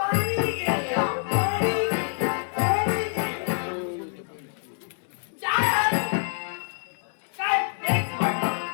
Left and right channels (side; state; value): right; silent; 61 dB below the other